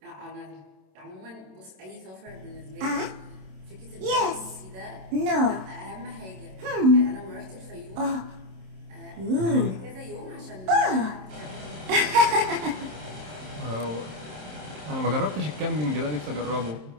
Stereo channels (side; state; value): left; late; 27 ms